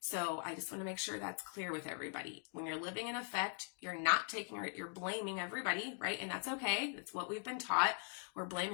So I just want to make sure that's clear with everybody. When you're living in effect, you're blaming everybody, right? And that's okay. That's what we've been taught. We're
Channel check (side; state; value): right; silent; 50 dB below the other